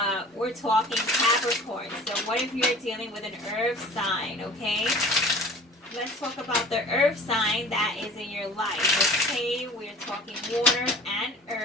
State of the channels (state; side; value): normal; both; correlation 0.44